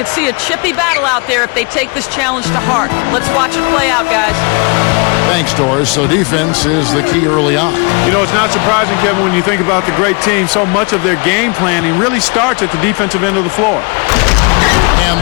see a chippy battle out there if they take this challenge to heart. Let's watch it play out, guys. Thanks, Doris. So defense is the key early on. You know, it's not surprising, Kevin, when you think about the great team. So much of their game planning really starts at the defensive end of the floor. And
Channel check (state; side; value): quieter; right; 32.1 dB